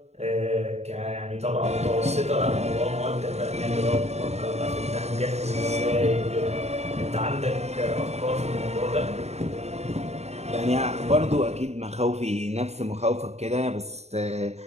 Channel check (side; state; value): left; late; 0.31 ms